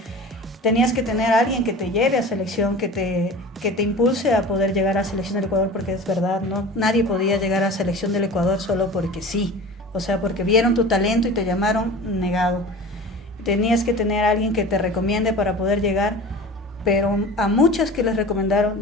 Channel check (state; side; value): normal; both; correlation 0.37